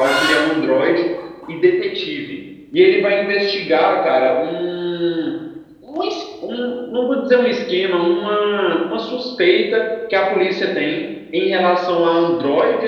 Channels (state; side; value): identical; both; correlation 1.00